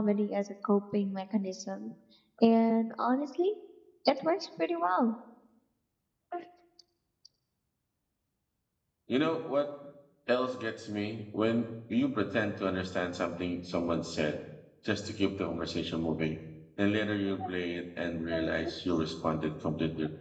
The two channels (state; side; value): identical; both; correlation 1.00